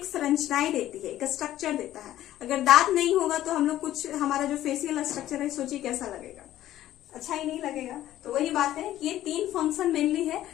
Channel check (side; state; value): right; quieter; 13.4 dB